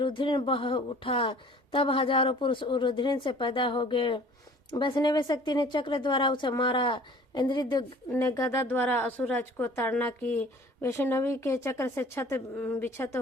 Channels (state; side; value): normal; both; correlation 0.49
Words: बह उठा। तब हजारों पुरुष रुधिर से पैदा हो गए। वैष्णवी शक्ति ने चक्र द्वारा उसे मारा। इंद्रिय ने गदा द्वारा असुरराज को ताड़ना की। वैष्णवी के चक्र से छत बिछत